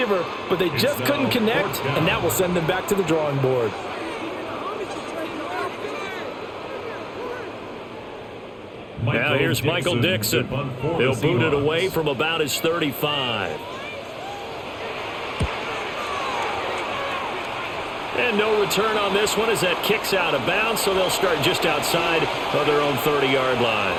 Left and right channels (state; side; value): identical; both; correlation 1.00